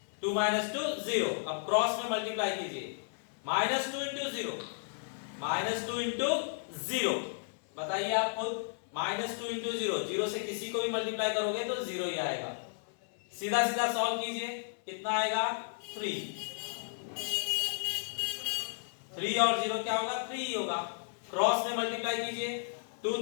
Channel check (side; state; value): right; silent; 55 dB below the other